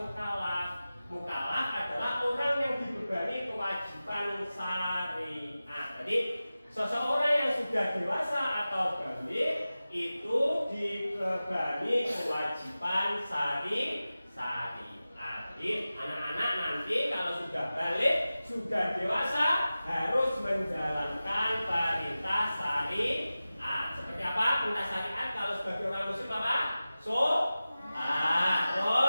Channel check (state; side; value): inverted; both; correlation -0.96